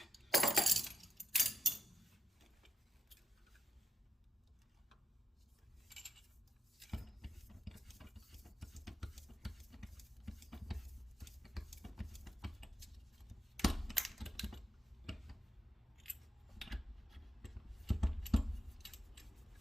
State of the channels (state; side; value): normal; both; correlation 0.85